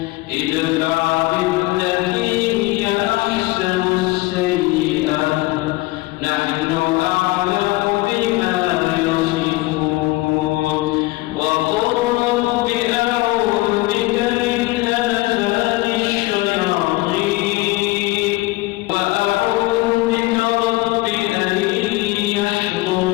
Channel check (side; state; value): right; quieter; 20.5 dB